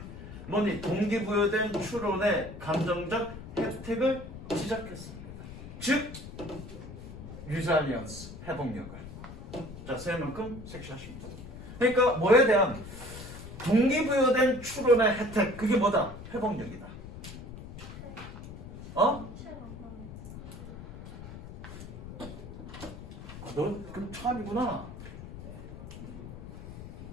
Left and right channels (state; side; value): noise; left; rumble, 12 dB below the sound